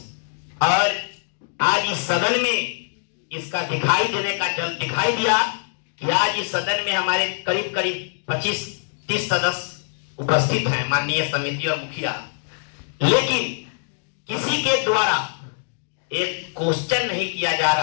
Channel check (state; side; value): silent; right; digital silence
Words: और आज इस सदन में इसका दिखाई देने का जल दिखाई दिया कि आज इस सदन में हमारे करीब करीब 25-30 सदस्य उपस्थित हैं, माननीय समिति और मुखिया, लेकिन किसी के द्वारा एक क्वेश्चन नहीं किया जा